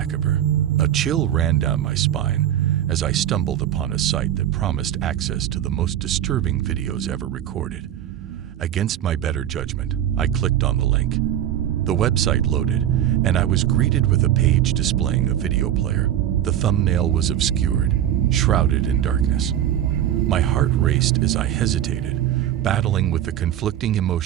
A chill ran down my spine as I stumbled upon a site that promised access to the most disturbing videos ever recorded. Against my better judgment, I clicked on the link. The website loaded, and I was greeted with a page displaying a video player. The thumbnail was obscured, shrouded in darkness. My heart raced as I hesitated, battling with the conflicting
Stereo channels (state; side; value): quieter; left; 11.1 dB